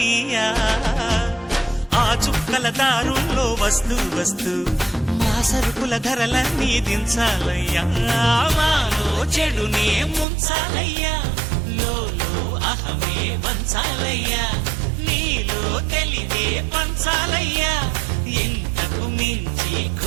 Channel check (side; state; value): left; drops out; at 10.2 s